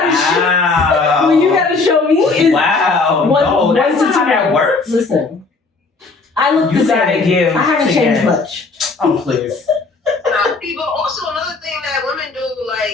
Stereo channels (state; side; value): quieter; right; 3.9 dB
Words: show, what you gotta show me is that's not how that works. Listen, I look the same. I haven't changed much. Oh please. But also another thing that women do,